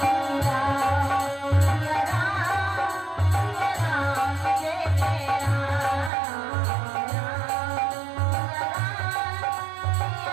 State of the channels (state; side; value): drops out; left; at 6.1 s